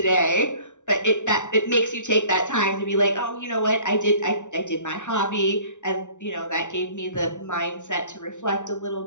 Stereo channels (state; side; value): late; right; 0.85 ms